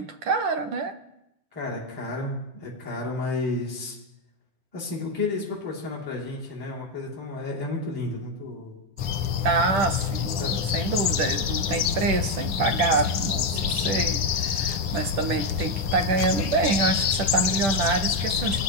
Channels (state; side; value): late; left; 10 ms